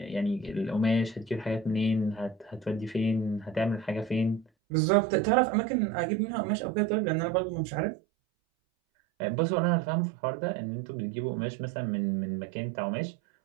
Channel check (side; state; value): left; drops out; at 4.5 s